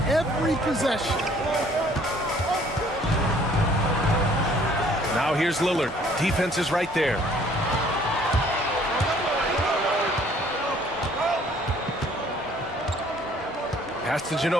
every possession. Now here's Lillard. Defense is right there. Pass to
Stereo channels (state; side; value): normal; both; correlation 0.58